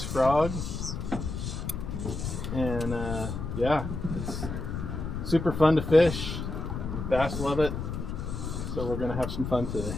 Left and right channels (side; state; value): left; noise; rumble, 5 dB below the sound